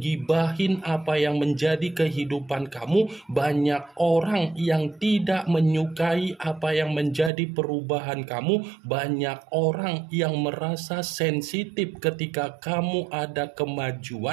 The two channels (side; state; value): left; drops out; at 7.3 s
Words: apa yang menjadi kehidupan kamu, banyak orang yang tidak menyukai apa yang menjadi perubahan kamu, banyak orang yang merasa sensitif ketika kamu ada